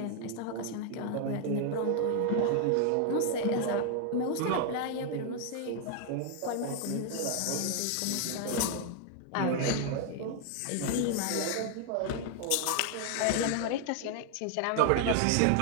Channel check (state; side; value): different; both; correlation 0.00